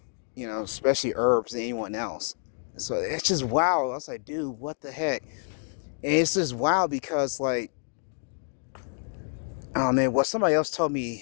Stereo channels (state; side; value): silent; right; digital silence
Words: Especially herbs than anyone else. So it's just wow. I was like, dude, what the heck? And it's just wow because like, oh man, well, somebody else told